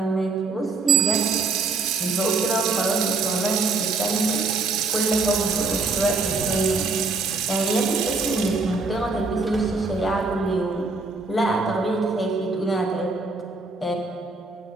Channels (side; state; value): left; quieter; 4.0 dB